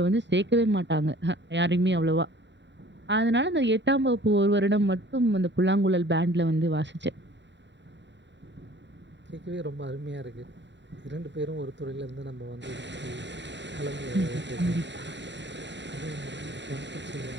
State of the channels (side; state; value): left; late; 0.52 ms